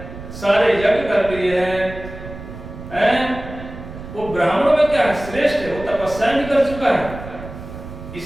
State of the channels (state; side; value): noise; right; rumble, 12 dB below the sound